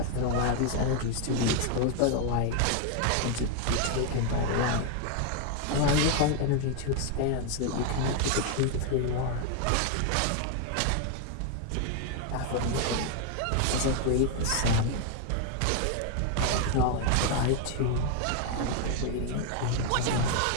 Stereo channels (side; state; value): both; different; correlation 0.00